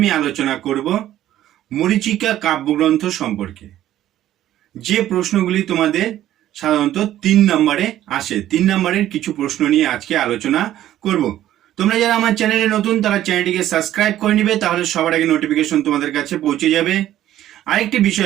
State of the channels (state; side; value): quieter; left; 12.8 dB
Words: আলোচনা করব মরীচিকা কাব্যগ্রন্থ সম্পর্কে। যে প্রশ্নগুলি তোমাদের সাধারণত 3 নম্বরে আসে, 3 নম্বরের কিছু প্রশ্ন নিয়ে আজকে আলোচনা করব। তোমরা যারা আমার চ্যানেলে নতুন তারা চ্যানেলটিকে সাবস্ক্রাইব করে নিবে, তাহলে সবার আগে নোটিফিকেশন তোমাদের কাছে পৌঁছে যাবে। আরেকটি